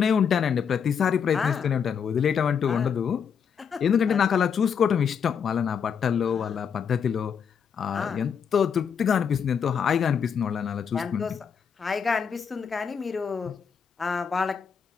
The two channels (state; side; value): quieter; right; 7.1 dB